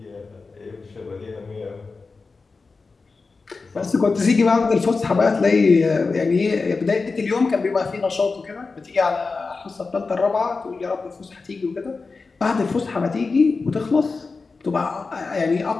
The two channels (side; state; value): right; quieter; 4.2 dB